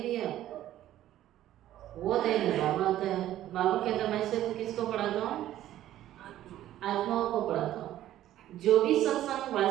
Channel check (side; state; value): left; quieter; 13.1 dB